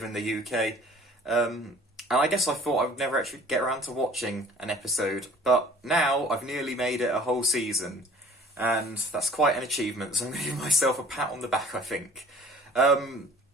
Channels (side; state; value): both; normal; correlation 0.49